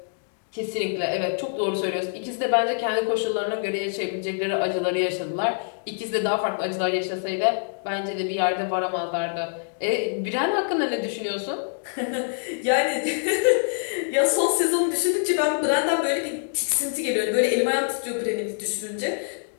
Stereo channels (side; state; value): right; silent; digital silence